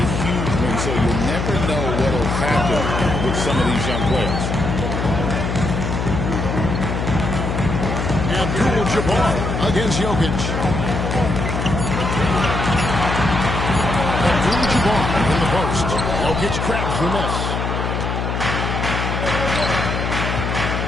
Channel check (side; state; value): left; noise; hum, 2 dB below the sound